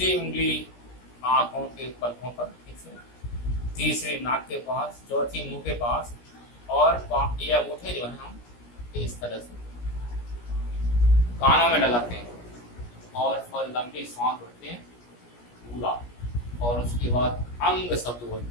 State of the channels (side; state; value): right; late; 17 ms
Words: उंगली आंखों के पलकों पर, ठीक से, तीसरी नाक के पास, चौथी मुंह के पास, और ये अंगूठे जो है हम इस तरह से कानों में लगाते हैं और लंबी सांस भरते हैं पूरा, और उसके बाद अंग शब्द